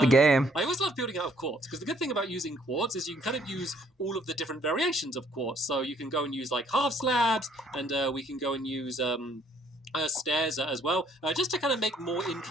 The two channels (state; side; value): normal; both; correlation 0.64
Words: game. I always love building out of quartz, because the good thing about using quartz is you can kind of use all of the different variations of quartz. So you can go and use like half slabs, and we can go and use stairs as well, just to kind of make more